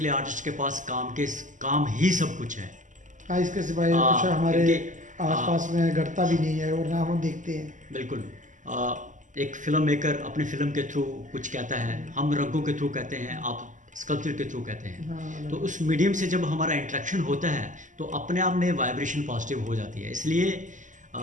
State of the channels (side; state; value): left; late; 0.37 ms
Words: आर्टिस्ट के पास काम ही सब कुछ है। हाँ, इसके सिवाय कुछ हमारे आसपास में घटता भी नहीं है और ना हम देखते हैं। बिल्कुल। एक फिल्म मेकर अपनी फिल्म के थ्रू कुछ कहता है, हम रंगों के थ्रू कहते हैं, आप स्कल्पचर के थ्रू कहते हैं। हाँ, तो उस मीडियम से जब हमारा इंटरेक्शन होता है तो अपने आप में वाइब्रेशन पॉजिटिव हो जाती है। इसलिए